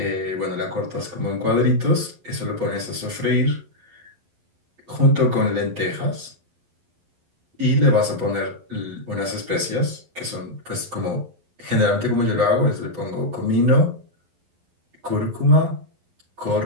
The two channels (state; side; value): late; left; 11 ms